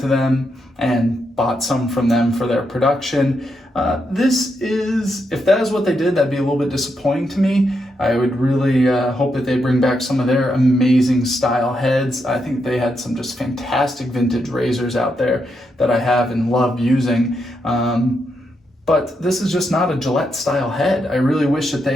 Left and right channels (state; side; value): normal; both; correlation 0.82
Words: them and bought some from them for their production. If that is what they did, that'd be a little bit disappointing to me. I would really hope that they bring back some of their amazing style heads. I think they had some just fantastic vintage razors out there that I have and love using. But this is just not a Gillette style head. I really wish that